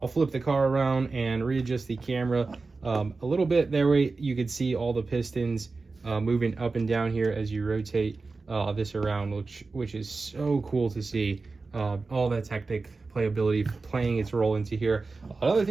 I'll flip the car around and readjust the camera a little bit. That way you can see all the pistons moving up and down here as you rotate this around, which is so cool to see. All that Technic playability playing its role into here. Another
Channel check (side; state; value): left; quieter; 3.9 dB